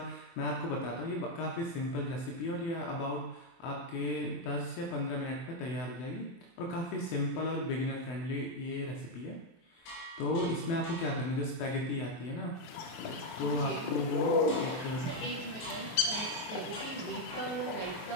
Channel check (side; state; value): right; late; 24 ms